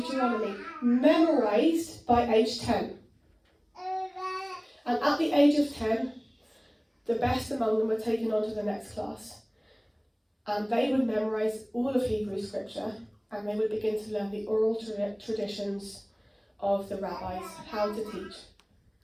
Memorized by age 10. And at the age of 10, the best among them were taken on to the next class. And they would memorize all of Hebrew scripture, and they would begin to learn the oral traditions of the rabbis, how to teach.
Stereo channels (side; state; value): both; identical; correlation 1.00